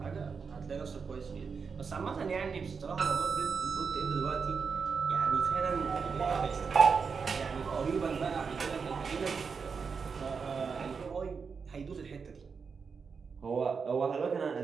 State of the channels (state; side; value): quieter; left; 5.5 dB